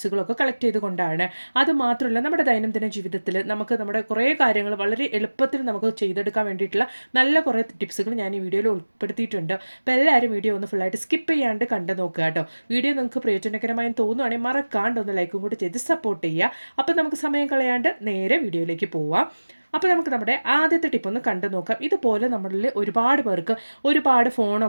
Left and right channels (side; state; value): both; inverted; correlation -1.00